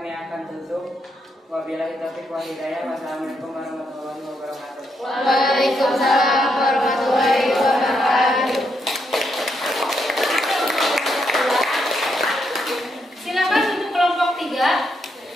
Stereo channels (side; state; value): both; normal; correlation 0.79